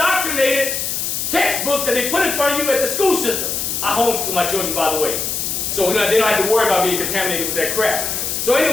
textbooks that they put in front of you at the school system. I homeschool my children, by the way. So they don't have to worry about being contaminated with that crap. So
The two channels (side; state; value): left; noise; hiss, 2 dB below the sound